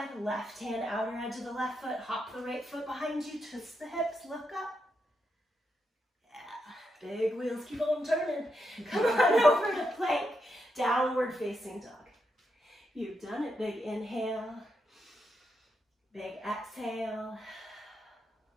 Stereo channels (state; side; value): normal; both; correlation 0.83